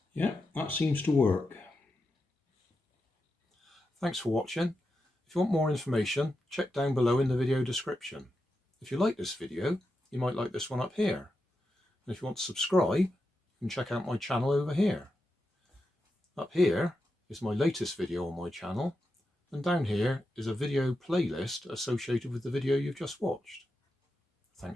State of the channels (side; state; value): both; normal; correlation 0.88